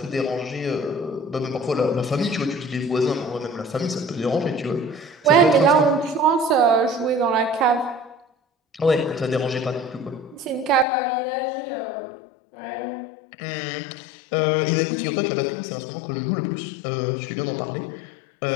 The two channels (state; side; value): drops out; right; at 10.9 s